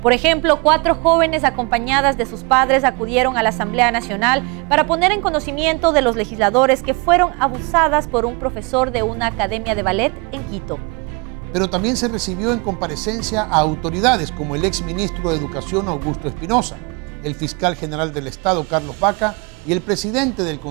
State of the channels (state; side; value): quieter; left; 30.5 dB